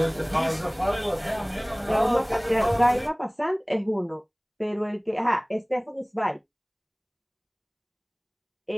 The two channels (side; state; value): both; identical; correlation 1.00